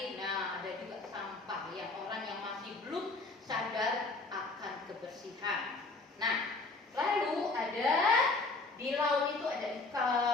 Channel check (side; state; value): right; quieter; 3.5 dB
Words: Nah, ada juga sampah yang orang yang masih belum sadar akan kebersihan. Nah, lalu ada di laut itu ada